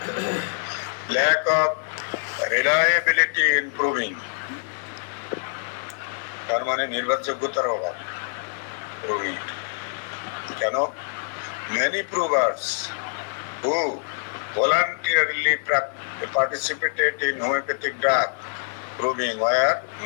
lack of reliability in proving, তার মানে নির্ভরযোগ্যতার অভাব প্রুভিং। কেন? many provers who voluntarily participated in homeopathic drug proving were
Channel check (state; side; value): silent; right; digital silence